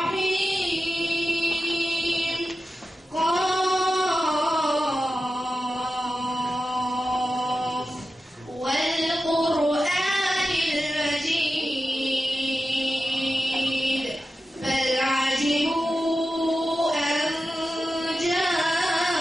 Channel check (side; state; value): both; normal; correlation 0.92